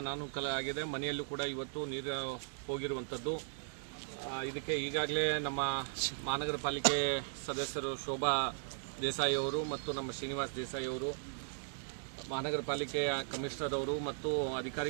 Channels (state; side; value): silent; left; digital silence